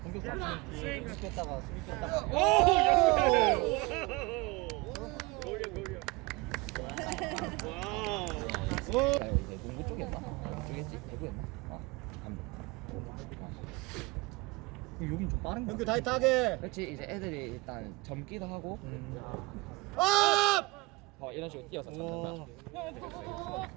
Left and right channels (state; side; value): quieter; left; 24.0 dB